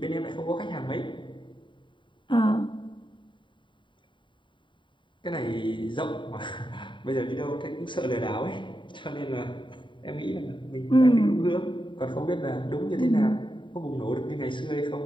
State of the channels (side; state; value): right; late; 0.23 ms